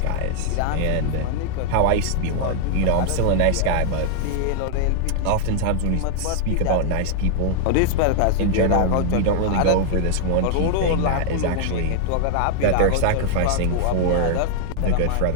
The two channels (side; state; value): both; different; correlation 0.00